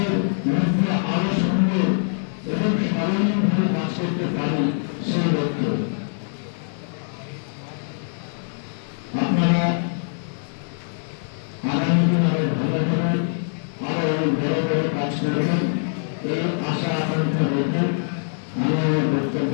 মধ্যে আরো সুন্দর এবং স্মরণীয়ভাবে কাজ করতে পারি সেই লক্ষ্যে। আপনারা আগামী দিন আরো ভালো করে আরো অনেক বড় বড় কাজ করবেন এই আশা আকাঙ্ক্ষা রেখে আমি আমার বক্তব্য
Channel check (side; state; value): right; silent; digital silence